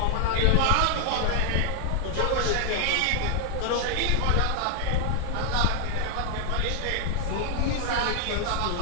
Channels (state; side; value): different; both; correlation 0.00